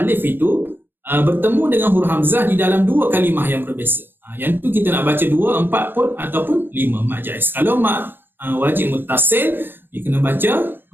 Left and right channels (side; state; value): left; late; 0.099 ms